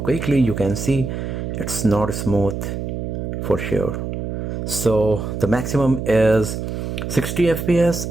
you can see it's not smooth for sure. So the maximum is 60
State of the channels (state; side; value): noise; right; hum, 4 dB below the sound